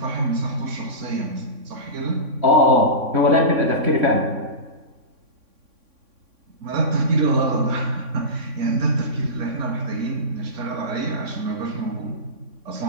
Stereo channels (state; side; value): late; left; 3.6 ms